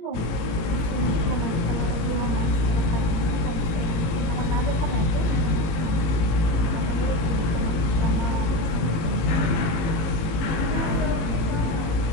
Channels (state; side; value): late; right; 18 ms